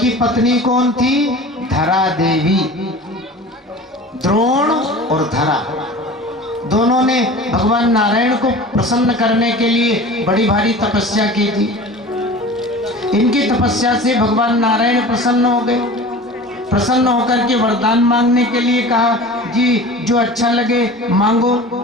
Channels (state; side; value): normal; both; correlation 0.38